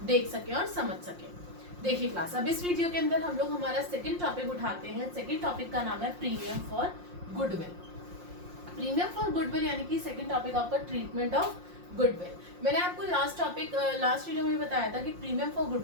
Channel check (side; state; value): left; late; 5.6 ms